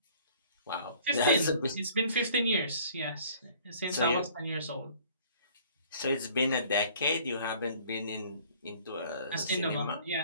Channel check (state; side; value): inverted; both; correlation -0.53